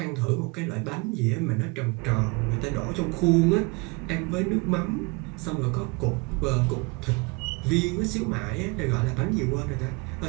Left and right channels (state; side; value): quieter; left; 27.8 dB